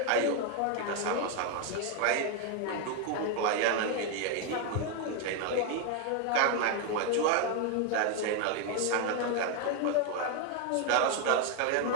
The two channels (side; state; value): both; different; correlation 0.01